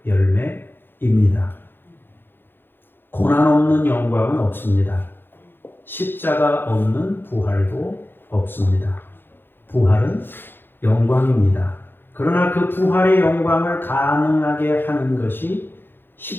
열매입니다. 고난 없는 영광은 없습니다. 십자가 없는 부활도 없습니다. 부활은 영광입니다. 그러나 그 부활의 영광을 가능하게 하는 것이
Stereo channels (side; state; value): right; late; 0.10 ms